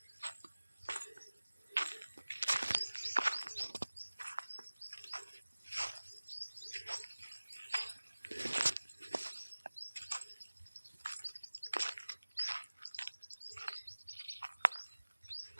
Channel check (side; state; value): both; inverted; correlation -1.00